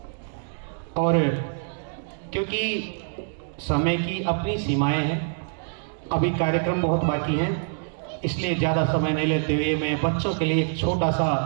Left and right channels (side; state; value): left; silent; digital silence